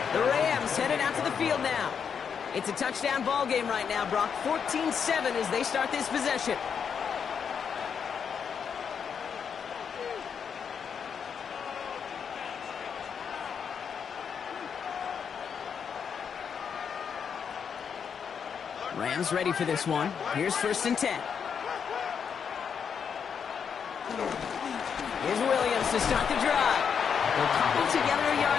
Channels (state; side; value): quieter; right; 7.0 dB